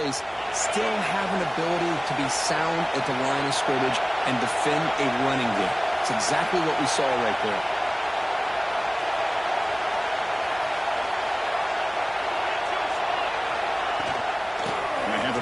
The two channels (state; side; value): identical; both; correlation 1.00